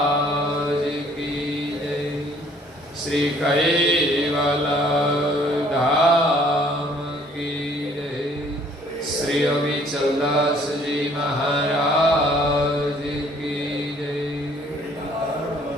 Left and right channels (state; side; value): normal; both; correlation 0.59